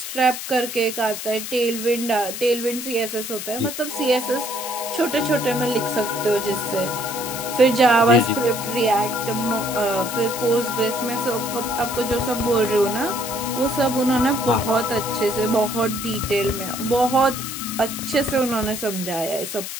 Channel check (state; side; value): noise; left; hiss, 7 dB below the sound